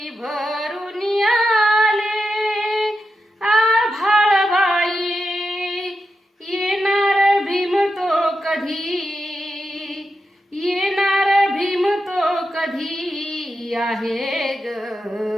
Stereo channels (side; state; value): both; normal; correlation 0.88